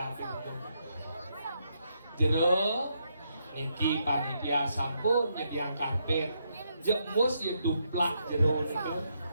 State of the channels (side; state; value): both; inverted; correlation -0.79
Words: itu. Jero, niki panitia sampun nyediang karpet. Jemus yang duplak jero niku.